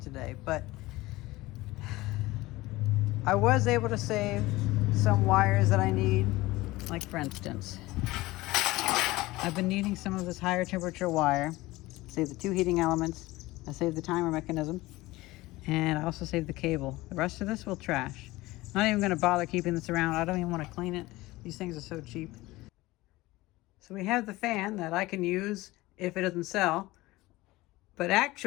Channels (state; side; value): quieter; right; 19.4 dB